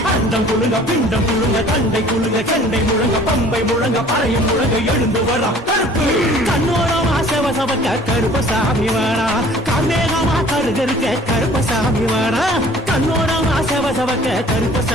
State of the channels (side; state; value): both; normal; correlation 0.51